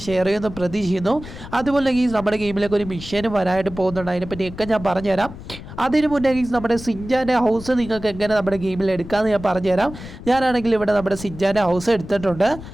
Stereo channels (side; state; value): left; noise; rumble, 13 dB below the sound